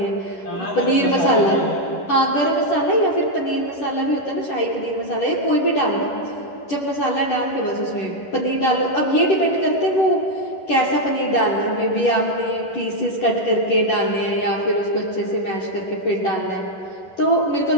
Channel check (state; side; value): late; right; 11 ms